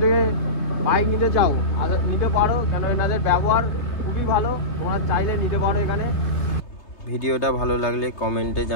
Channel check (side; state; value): right; late; 3.3 ms